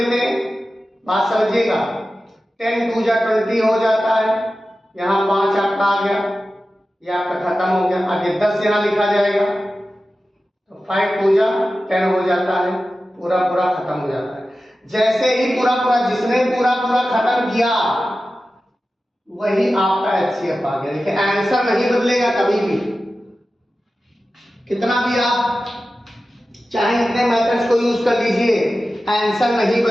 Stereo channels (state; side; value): normal; both; correlation 0.94